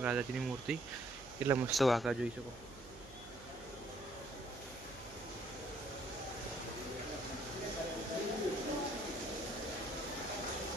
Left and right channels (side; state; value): right; noise; hum, 18 dB below the sound